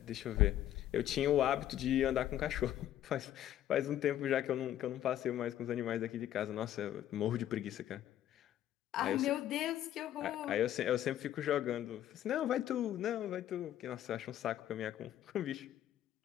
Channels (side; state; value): right; quieter; 11.9 dB